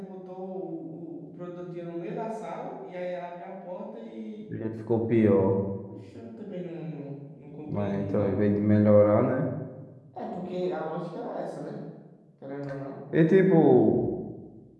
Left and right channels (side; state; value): both; identical; correlation 1.00